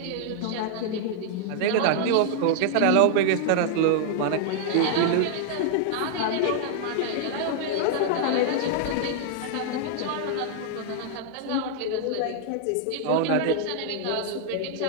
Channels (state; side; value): different; both; correlation 0.00